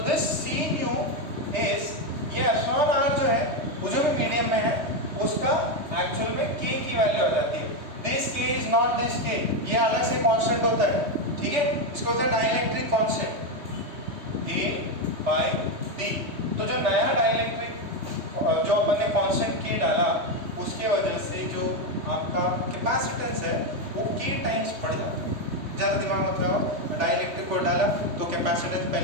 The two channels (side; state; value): left; late; 3.2 ms